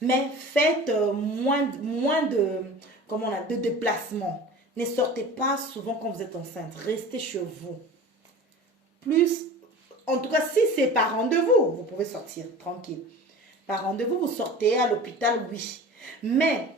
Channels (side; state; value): both; normal; correlation 0.38